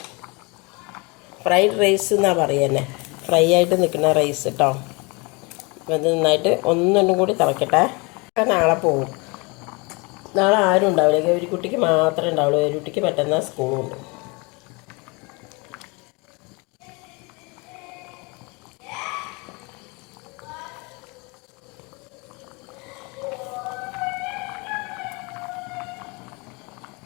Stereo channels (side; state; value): right; quieter; 28.6 dB